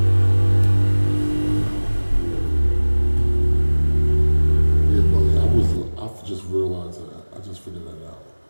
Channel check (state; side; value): inverted; both; correlation -1.00